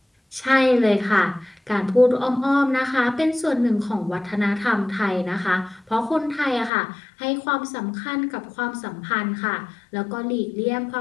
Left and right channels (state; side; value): drops out; right; at 6.7 s